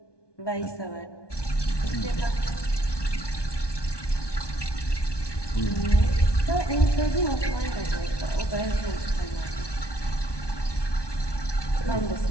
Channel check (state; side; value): late; right; 1.2 ms